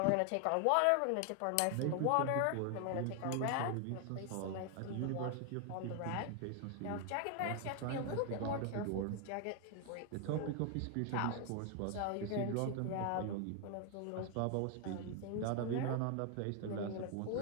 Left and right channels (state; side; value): different; both; correlation 0.00